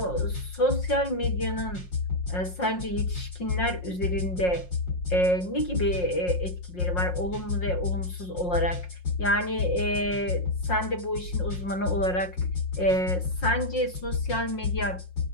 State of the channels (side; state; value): right; late; 5.6 ms